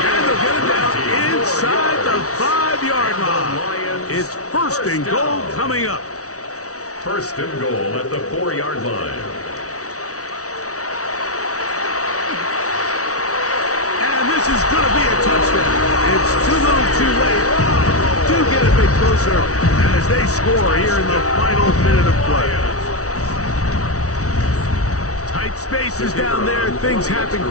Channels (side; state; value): right; late; 0.65 ms